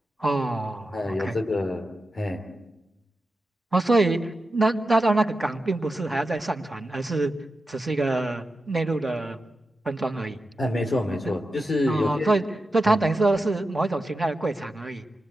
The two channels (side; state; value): both; normal; correlation 0.90